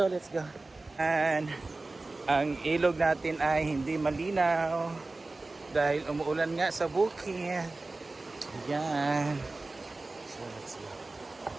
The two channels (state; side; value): quieter; left; 3.2 dB